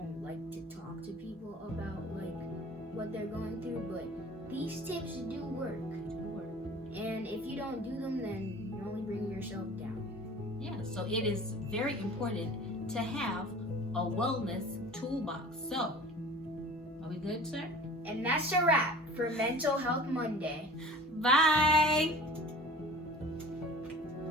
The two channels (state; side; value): normal; both; correlation 0.42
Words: like to talk to people about what they're going through, but these tips do work. And if you don't do them, then you're only bringing yourself down. Yeah, so it is very important to have a wellness toolbox. So, are we good, sir? And that's a wrap for Mental Health Monday. Bye!